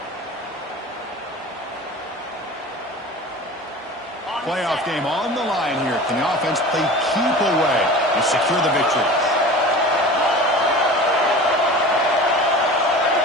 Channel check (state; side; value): normal; both; correlation 0.37